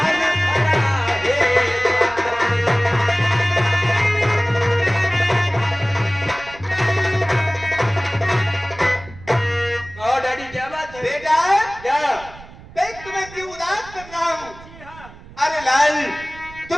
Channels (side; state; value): right; noise; rumble, 19 dB below the sound